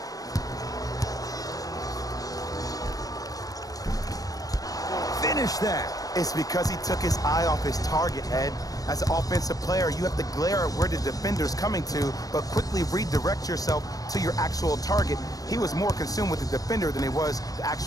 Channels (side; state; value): right; late; 0.18 ms